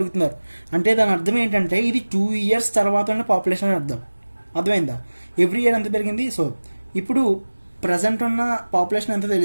అంటే దాని అర్థం ఏంటంటే ఇది 2 years తర్వాత ఉన్న పాపులేషన్ అర్థం. అర్థమైందా? ఎవ్రీ ఇయర్ ఎంత పెరిగింది. సో ఇప్పుడు ప్రజెంట్ ఉన్న పాపులేషన్ ఎంత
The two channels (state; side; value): inverted; both; correlation -1.00